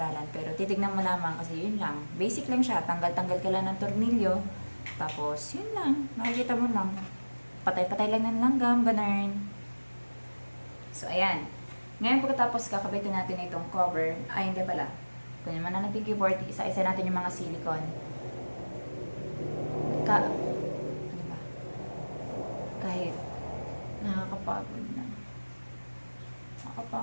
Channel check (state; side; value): inverted; both; correlation -1.00